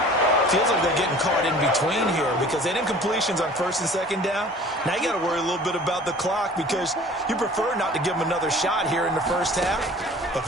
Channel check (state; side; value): normal; both; correlation 0.47